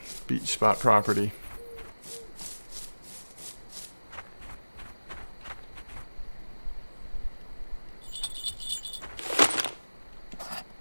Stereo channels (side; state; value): both; inverted; correlation -1.00